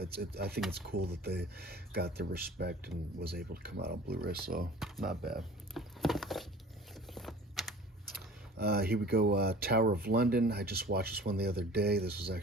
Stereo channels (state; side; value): normal; both; correlation 0.45